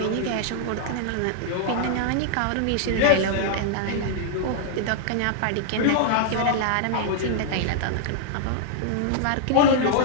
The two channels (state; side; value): different; both; correlation -0.01